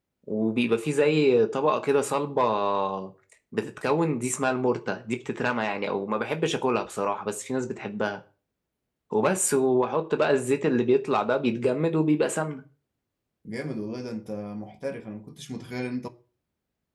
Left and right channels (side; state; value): both; identical; correlation 1.00